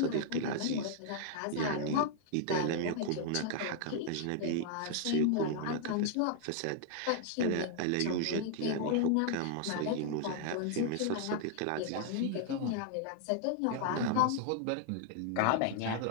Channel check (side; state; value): both; different; correlation -0.01